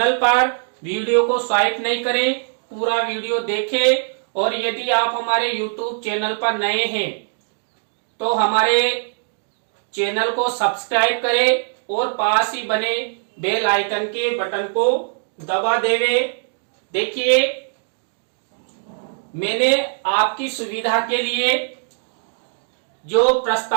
पर वीडियो को स्वाइप नहीं करें, पूरा वीडियो देखें। और यदि आप हमारे YouTube चैनल पर नए हैं तो हमारे चैनल को सब्सक्राइब करें और पास ही बने बेल आइकन के बटन को दबा देवे। देखिए, मैंने आपकी सुविधा के लिए जो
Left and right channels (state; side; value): silent; left; digital silence